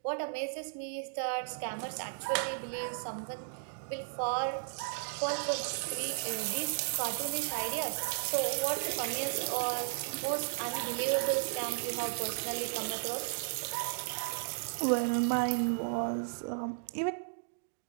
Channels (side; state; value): left; silent; digital silence